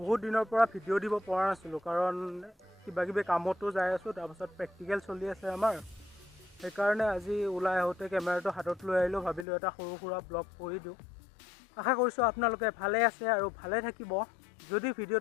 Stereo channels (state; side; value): drops out; right; at 9.5 s